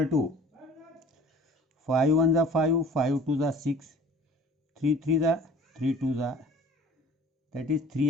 to 5 1 the 5, 5 2 the 6, 3 3 the 3 2 the, that is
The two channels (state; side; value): normal; both; correlation 0.47